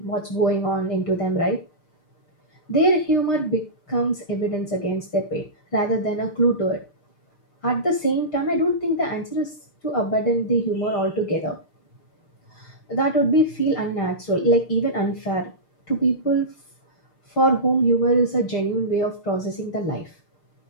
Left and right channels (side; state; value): right; late; 6.6 ms